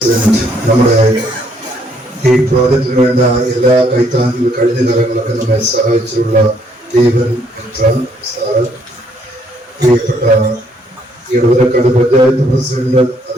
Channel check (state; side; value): normal; both; correlation 0.68